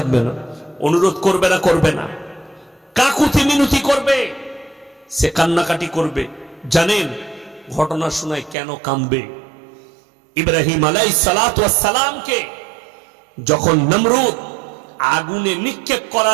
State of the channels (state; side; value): drops out; left; at 8.6 s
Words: না? অনুরোধ করবে না করবে না? কাকুতি মিনতি করবে, সে কান্নাকাটি করবে। জানেন ঘটনা শোনায় কেন কাঁদবে? ইব্রাহিম আলাইহিস সালাতু ওয়াস সালামকে যখন নমরুদ আগুনে নিক্ষেপ